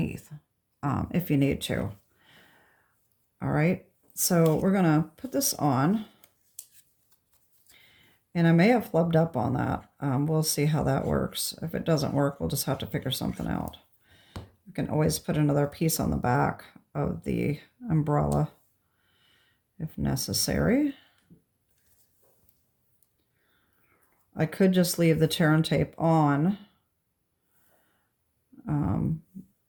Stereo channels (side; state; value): both; identical; correlation 1.00